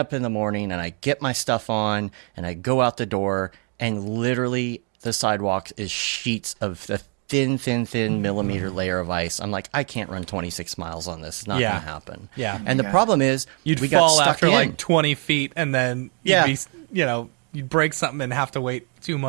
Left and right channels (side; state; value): left; quieter; 38.5 dB